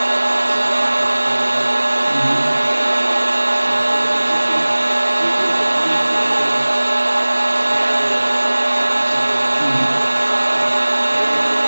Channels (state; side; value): inverted; both; correlation -1.00